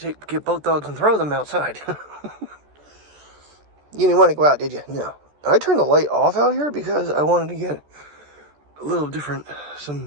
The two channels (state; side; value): late; left; 14 ms